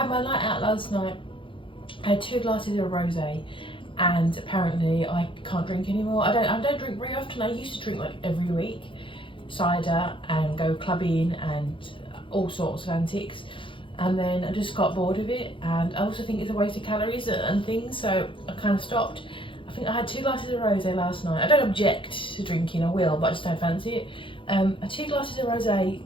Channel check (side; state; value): right; late; 0.25 ms